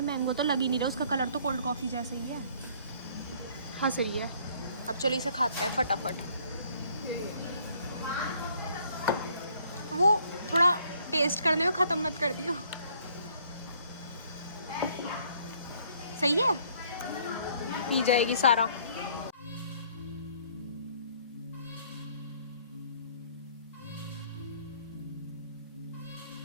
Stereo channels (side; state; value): both; inverted; correlation -0.61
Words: मैंगो तो लग ही नहीं रहा, उसका कलर तो कोल्ड कॉफ़ी जैसा ही है। हाँ सही है। अब चलो इसे खाते हैं फटाफट। वो थोड़ा टेस्ट करने में ख़त्म मत कर दियो। सही है, पी जाएगी सारा।